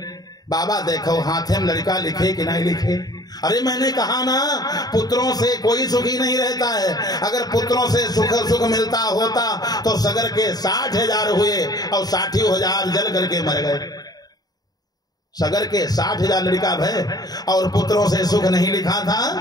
बाबा देखो हाथे में लड़का लिखे कि नहीं लिखे। अरे मैंने कहा ना पुत्रों से कोई सुखी नहीं रहता है, अगर पुत्रों से सुख मिलता होता तो सगर के 60,000 हुए और 60,000 जल करके मर गए। सगर के 60,000 लड़का भय और पुत्रों से सुख नहीं लिखा था।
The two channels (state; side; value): late; right; 0.19 ms